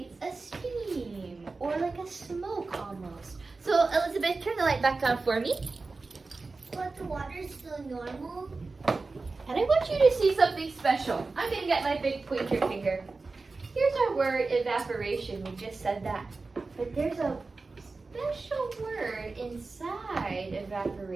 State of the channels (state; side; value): quieter; left; 3.8 dB